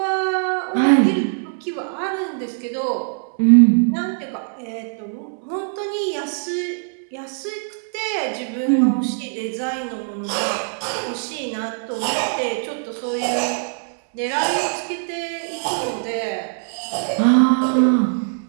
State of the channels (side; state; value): left; silent; 64 dB below the other